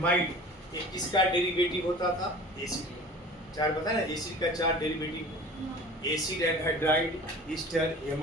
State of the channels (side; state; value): both; normal; correlation 0.42